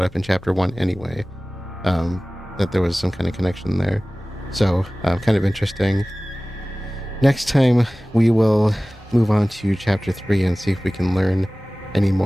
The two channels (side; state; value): both; normal; correlation 0.98